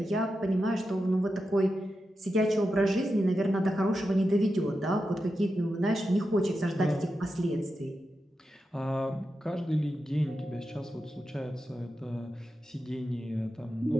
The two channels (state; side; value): normal; both; correlation 0.89